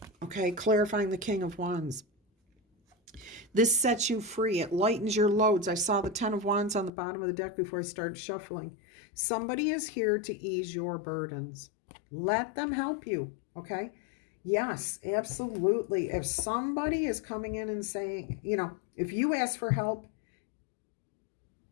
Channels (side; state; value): right; drops out; at 6.9 s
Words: okay? Clarifying the King of Wands. This sets you free. It lightens your loads. I saw the 10 of Wands on the bottom of the deck before I started shuffling. Somebody is here to ease your burdens. Let them help you, okay? Yes, absolutely. If somebody is coming in and saying, you know, if you ask for help,